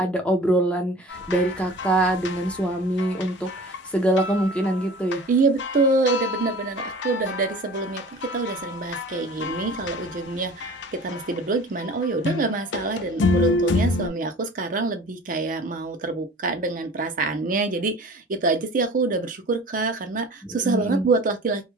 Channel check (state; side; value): normal; both; correlation 0.42